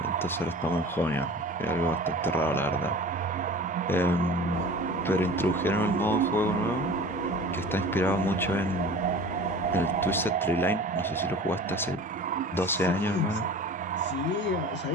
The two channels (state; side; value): normal; both; correlation 0.40